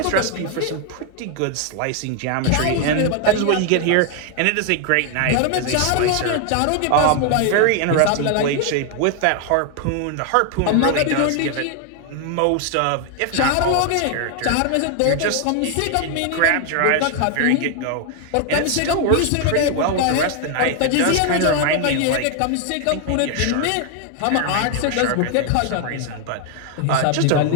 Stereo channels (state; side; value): different; both; correlation 0.00